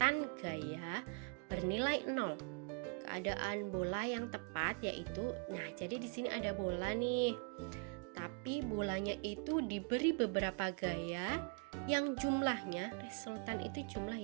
gaya bernilai 0. Keadaan bola yang tepat yaitu, jadi di sini ada bola nih. Tapi bolanya itu diberi beberapa gaya yang jumlahnya, resultan itu jumlah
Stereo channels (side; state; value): left; quieter; 37.9 dB